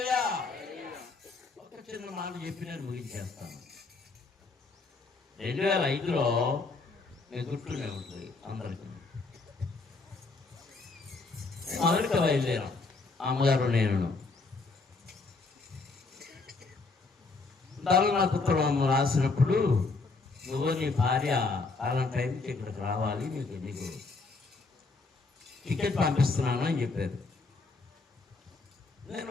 ఒక చిన్న మాట చెప్పి నేను ముగించేస్తాను. 2005లో నేను గుర్తునే ఉంటుంది అందరికీ. అమెరికా బయలుదేరాం, అమ్మగారు నేను. దానిలో నాకు ఉత్తరం రాసినప్పుడు, నువ్వు నీ భార్య అలాంటి టైంకి ఇక్కడికి రావాలి, నీకు టికెట్ పంపిస్తున్నాను అని చెప్పారు. నేను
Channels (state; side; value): quieter; right; 3.8 dB